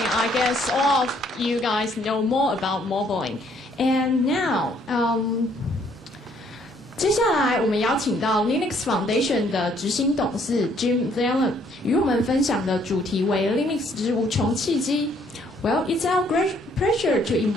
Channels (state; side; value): normal; both; correlation 0.65